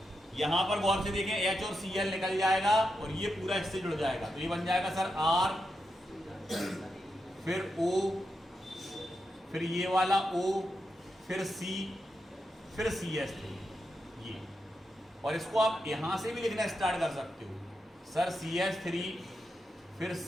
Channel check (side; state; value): both; normal; correlation 0.86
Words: यहां पर गौर से देखें, H और Cl निकल जाएगा और ये पूरा इससे जुड़ जाएगा, तो ये बन जाएगा सर R, फिर O, फिर ये वाला O, फिर C, फिर CH3 ये। और इसको आप यहां से भी लिखना स्टार्ट कर सकते हो सर, CH3, फिर C,